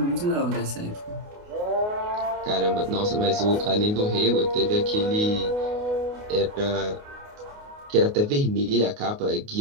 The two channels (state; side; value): late; left; 28 ms